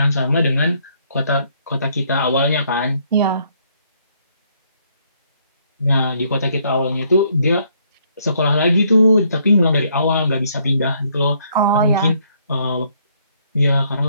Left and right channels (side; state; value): both; inverted; correlation -0.68